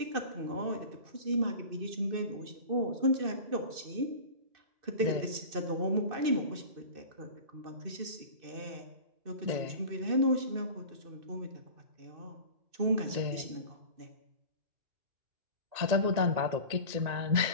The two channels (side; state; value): left; late; 2.6 ms